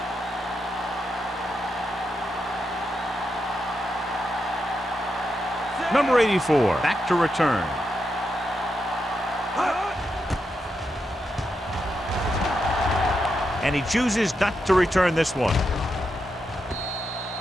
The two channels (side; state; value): both; normal; correlation 0.85